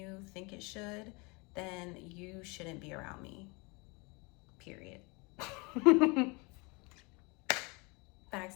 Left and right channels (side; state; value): right; quieter; 28.5 dB